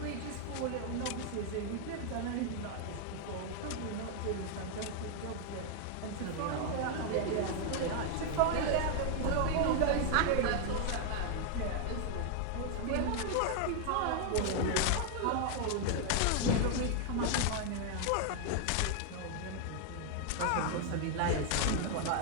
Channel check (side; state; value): both; different; correlation 0.00